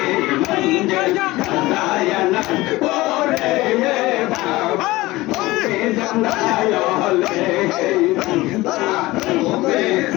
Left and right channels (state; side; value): quieter; right; 19.4 dB